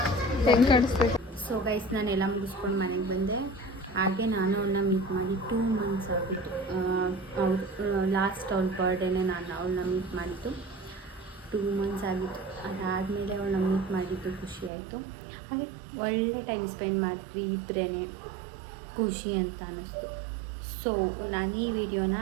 ಹೆಂಗೆ ಕಾಣಿಸ್ಬೇಕು? ಸೊ ಗೈಸ್, ನಾನೆಲ್ಲ ಮುಗಿಸ್ಕೊಂಡು ಮನೆಗೆ ಬಂದೆ. ಹಾಗೆ ನಾನು ಅವಳನ್ನ ಮೀಟ್ ಮಾಡಿ 2 ಮಂತ್ಸ್ ಆಗಿತ್ತು. ಲಾಸ್ಟ್ ಅವ್ಳ ಬರ್ಡೇನೆ ನಾನು ಅವಳನ್ನ ಮೀಟ್ ಮಾಡಿದ್ದು. 2 ಮಂತ್ಸ್ ಆಗಿತ್ತು. ಅದಾದಮೇಲೆ ಅವಳನ್ನ ಮೀಟ್ ಮಾಡಿದ್ದು ಖುಷಿ ಆಯಿತು. ಹಾಗೆ ಒಳ್ಳೆ ಟೈಮ್ ಸ್ಪೆಂಡ್ ಮಾಡಿದ್ವಿ ಇಬ್ಬರೇ, ಖುಷಿ ಅಂತ ಅನ್ನಿಸ್ತು. ಸೊ ನಾನು ಈ ವಿಡಿಯೋನ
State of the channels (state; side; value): drops out; left; at 14.7 s